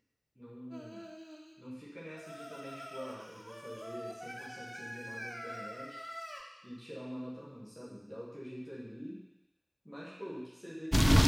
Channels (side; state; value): both; identical; correlation 1.00